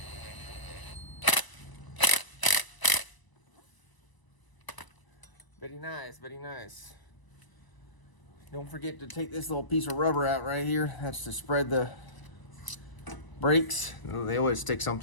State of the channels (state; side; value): late; right; 1.0 ms